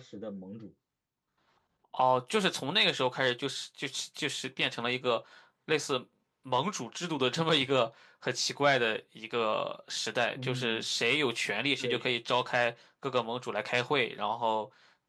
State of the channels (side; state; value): both; identical; correlation 1.00